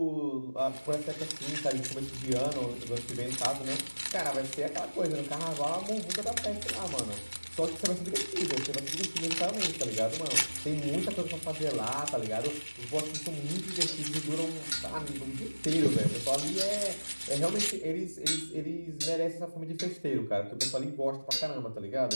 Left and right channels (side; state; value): both; inverted; correlation -1.00